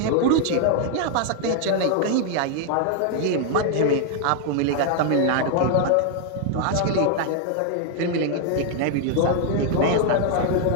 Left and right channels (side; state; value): both; different; correlation 0.00